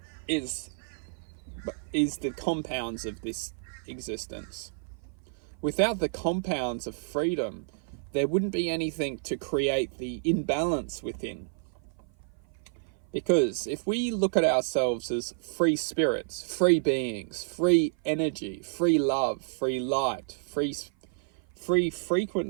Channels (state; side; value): silent; left; 55 dB below the other